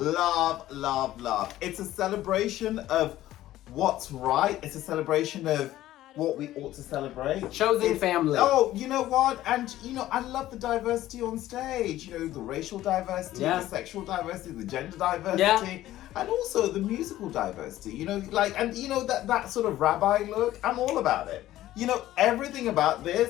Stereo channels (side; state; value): right; quieter; 14.4 dB